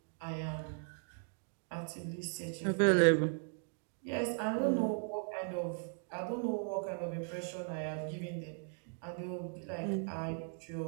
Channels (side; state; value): left; silent; 53 dB below the other